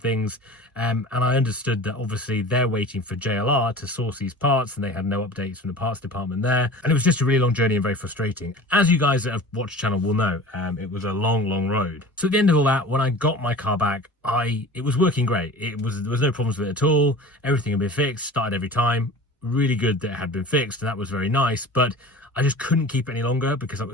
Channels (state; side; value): normal; both; correlation 0.39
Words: And I understood that obviously they're waiting for JLR to source these parts, and they had no updates from the parts department there. And it was just a really long journey and very frustrating. As you guys that have watched the channel will know, it was a long, long road. So at the end of all that, when I got my car back, it was working great. There was no problems with it at all. Everything had been fixed, started every time. Really good that it had been fixed, and that was very nice. But I just couldn't keep it any longer because I